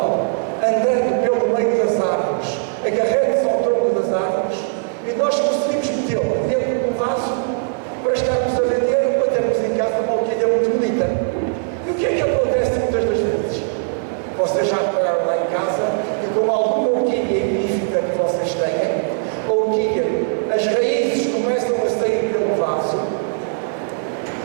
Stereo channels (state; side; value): silent; left; 66 dB below the other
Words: andando pelo meio das árvores, agarrando-se ao tronco das árvores, e nós conseguimos metê-la dentro de um vaso para estarmos a vender ou para termos em casa uma orquídea muito bonita. E o que é que acontece muitas das vezes? Vocês já repararam lá em casa que, com alguma orquídea epífita que vocês tenham, a orquídea, as raízes começam a sair pelo vaso,